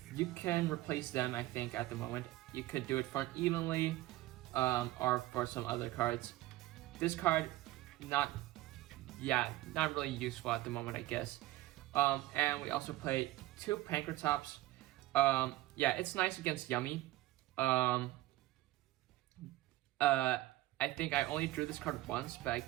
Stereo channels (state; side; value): quieter; left; 17.0 dB